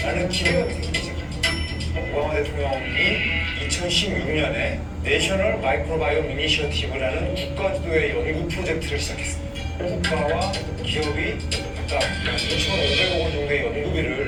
기대감이 생기기 시작합니다. 오바마 대통령이 2016년에 내셔널 마이크로바이옴 이니셔티브라는 국가주도의 연구 프로젝트를 시작했습니다. 국가와 기업이 각각 2,500억 원 정도의 연구비를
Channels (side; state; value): both; identical; correlation 1.00